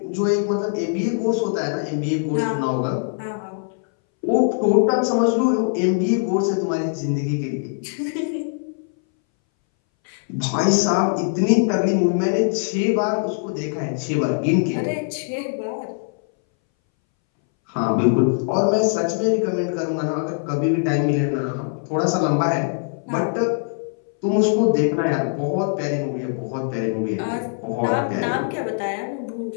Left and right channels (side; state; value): right; silent; 62 dB below the other